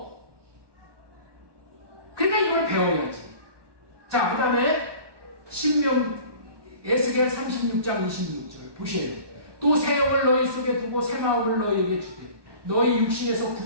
그러니까 이걸 배워야지. 자, 그 다음에 에스겔 36장 26절 보셔야 돼요. 또 새 영을 너희 속에 두고 새 마음을 너희에게 주되 너희 육신에서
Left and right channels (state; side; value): late; left; 1.2 ms